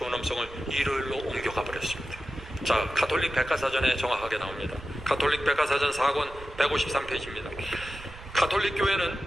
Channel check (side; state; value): right; noise; rumble, 16 dB below the sound